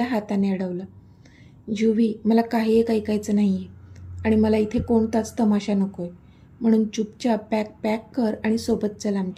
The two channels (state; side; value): identical; both; correlation 1.00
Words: हाताने अडवलं. युवी, मला काही एक ऐकायचं नाही आहे आणि मला इथे कोणताच तमाशा नको आहे, म्हणून चुपचाप बॅग पॅक कर आणि सोबत चल